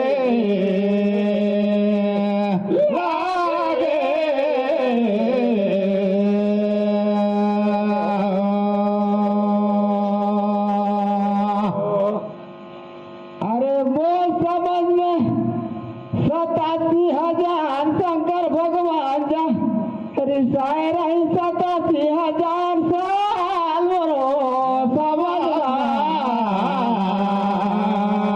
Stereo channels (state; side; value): identical; both; correlation 1.00